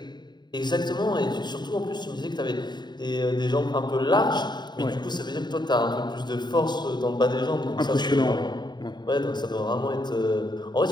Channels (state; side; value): late; right; 0.21 ms